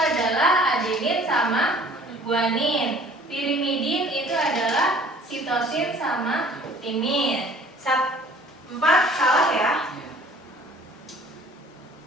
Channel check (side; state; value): both; normal; correlation 0.52